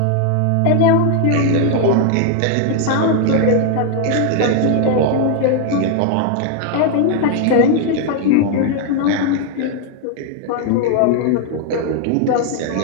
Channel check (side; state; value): both; different; correlation 0.00